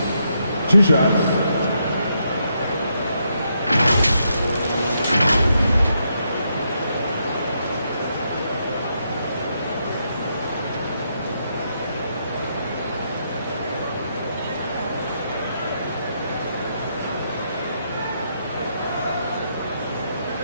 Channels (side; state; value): both; inverted; correlation -0.78